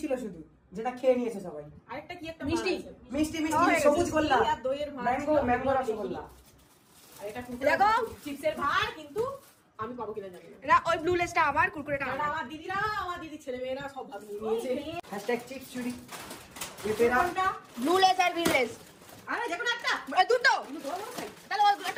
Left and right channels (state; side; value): identical; both; correlation 1.00